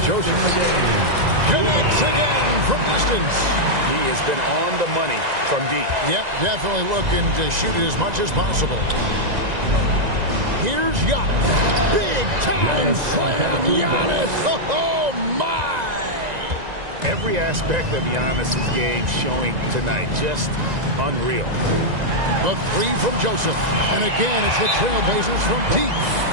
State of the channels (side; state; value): left; late; 1.9 ms